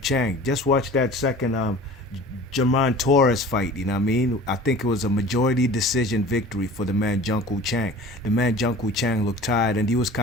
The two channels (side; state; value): both; normal; correlation 0.42